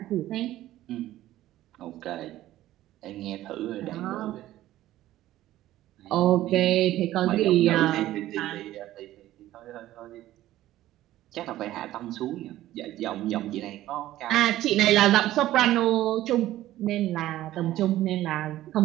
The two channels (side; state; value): left; quieter; 14.5 dB